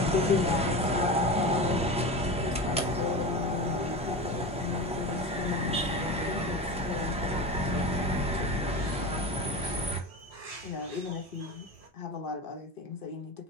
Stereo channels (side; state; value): both; normal; correlation 0.27